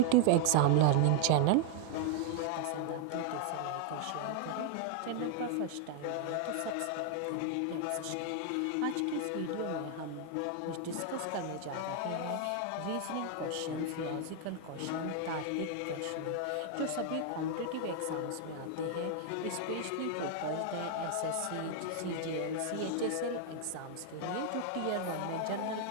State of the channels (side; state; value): both; different; correlation 0.00